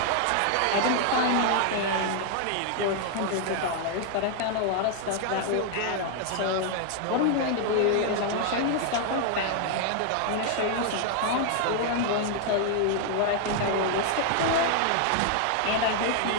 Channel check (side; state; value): both; different; correlation 0.00